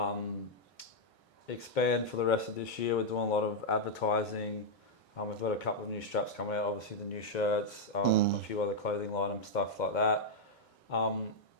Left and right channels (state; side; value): normal; both; correlation -0.04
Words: expand for the rest of this year. We're doing a lot of advertising. We've got a couple of new straps coming out, obviously the new shirts, a few other clothing items, stuff like that.